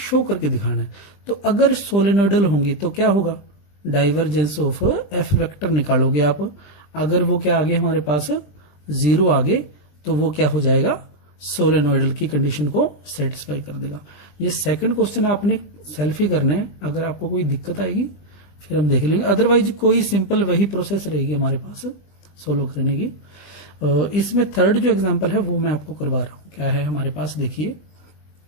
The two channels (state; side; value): late; right; 20 ms